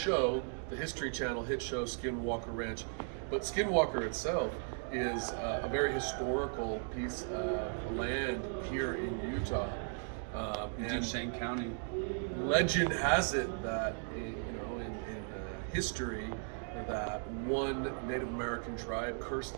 the History Channel hit show Skinwalker Ranch. But Skinwalker itself is a very historical piece of land here in Utah. In Duchesne County. Legend has it that in history that one Native American tribe cursed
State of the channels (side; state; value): left; silent; 53 dB below the other